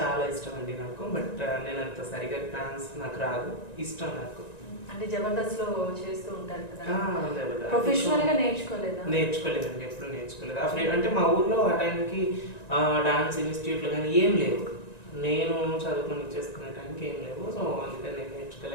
చాలా ఇష్టం అండి నాకు. బట్ నేను అంత సరిగా డాన్స్ నాకు రాదు. ఇష్టం నాకు. అంటే జబర్దస్త్ లో చేస్తూ ఉంటారు కదా, జబర్దస్త్ ప్రొఫెషనల్ గా నేర్చుకోలేదా? నేర్చుకోలేదండి, ఎప్పుడు నేర్చుకోలేదు. అంటే మా ఊర్లో ఆ టైంకి డాన్స్ ఇన్స్టిట్యూట్లు కానీ ఏం లేవు. నేను చదువుకొని చేసుకునే టైంకి ఏం లేవు. సో అందుకని నేను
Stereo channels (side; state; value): right; late; 1.9 ms